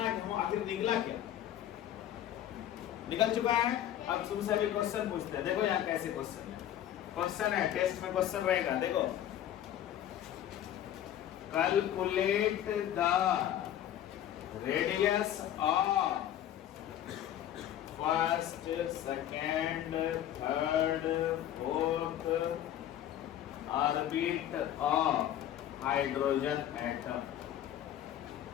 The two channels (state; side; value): quieter; right; 11.4 dB